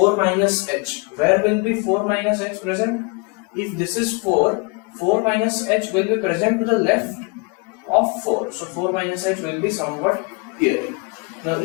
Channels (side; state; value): right; quieter; 31.4 dB